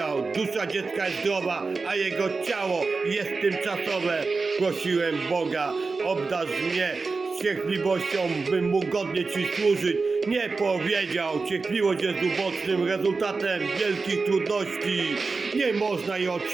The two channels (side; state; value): left; quieter; 4.2 dB